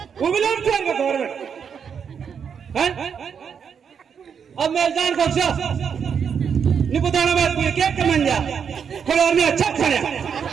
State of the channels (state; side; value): quieter; left; 7.1 dB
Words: वो भी लोग खेल गवर्नमेंट है। अब मैं जान को नहीं बताना बात पूरी केक के मन जा कोई और में अच्छा खाने